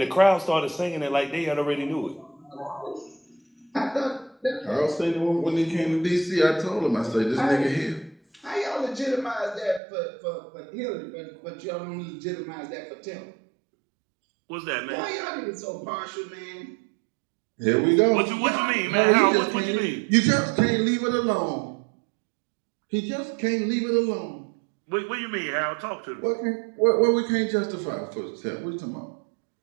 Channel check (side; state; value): left; drops out; at 9.8 s